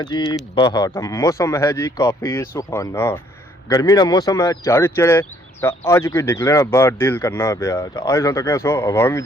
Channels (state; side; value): normal; both; correlation 0.64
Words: जी बाहर का मौसम है जी काफ़ी सुहाना गर्मी का मौसम है चढ़ चढ़े तो अज कोई निकलना बाहर दिल करना पाया तो अज तक सो हवा भी